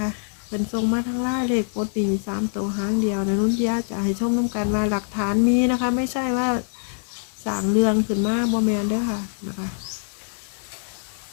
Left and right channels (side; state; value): right; silent; 63 dB below the other